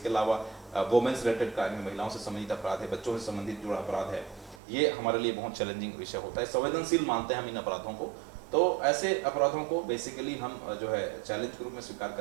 अलावा वुमेन्स रिलेटेड क्राइम, महिलाओं से संबंधित अपराध है, बच्चों से संबंधित जुड़ा अपराध है, ये हमारे लिए बहुत चैलेंजिंग विषय होता है। संवेदनशील मानते हैं हम इन अपराधों को। तो ऐसे अपराधों को बेसिकली हम जो है चैलेंज के रूप में स्वीकार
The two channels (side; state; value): left; drops out; at 4.6 s